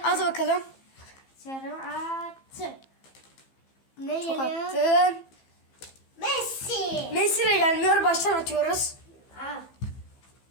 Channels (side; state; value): right; late; 15 ms